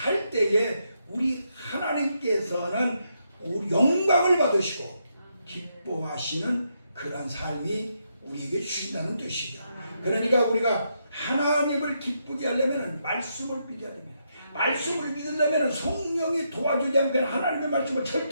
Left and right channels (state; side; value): inverted; both; correlation -0.80